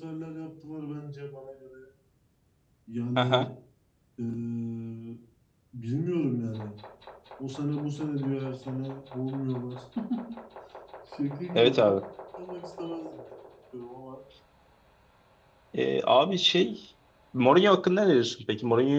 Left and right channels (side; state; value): both; identical; correlation 1.00